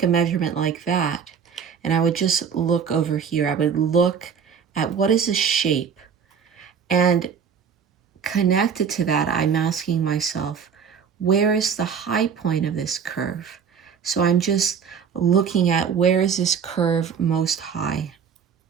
a measurement like that, and I would just look over here. I would look at what is the shape, and connected to that, I'm asking myself, where is the high point of this curve? So I'm just looking at where is this curve most high?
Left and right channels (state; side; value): quieter; left; 6.9 dB